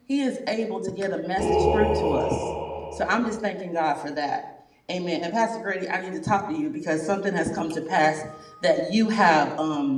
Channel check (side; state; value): both; identical; correlation 1.00